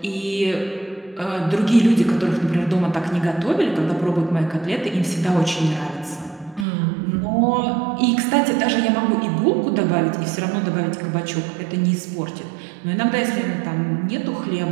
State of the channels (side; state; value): left; drops out; at 6.7 s